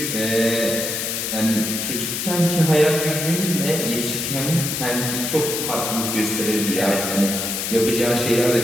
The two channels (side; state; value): left; noise; hiss, 2 dB below the sound